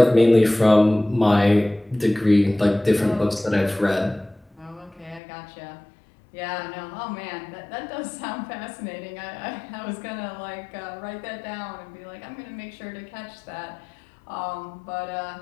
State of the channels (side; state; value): right; drops out; at 5.2 s